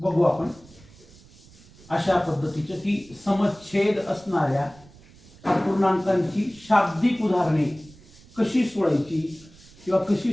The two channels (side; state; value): right; noise; rumble, 24 dB below the sound